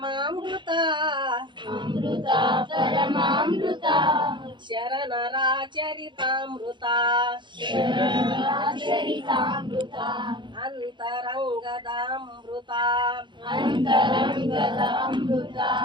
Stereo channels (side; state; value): left; late; 0.23 ms